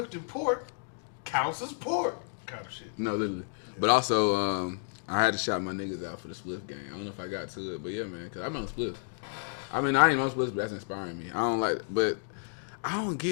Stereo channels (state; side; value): silent; right; digital silence